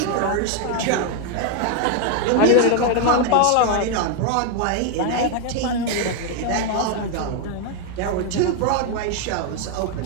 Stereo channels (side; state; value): both; different; correlation 0.01